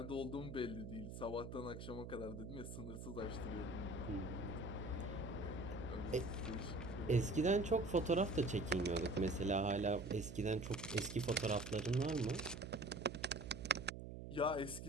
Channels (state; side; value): noise; right; hum, 9 dB below the sound